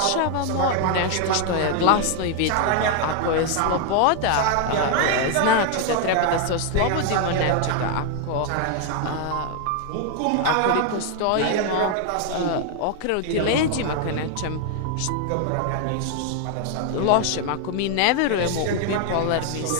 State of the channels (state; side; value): different; both; correlation 0.00